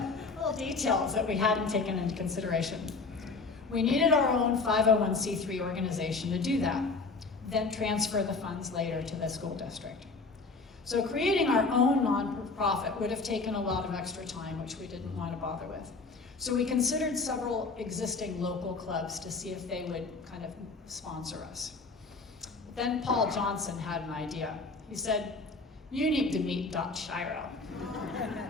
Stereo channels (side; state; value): right; quieter; 3.9 dB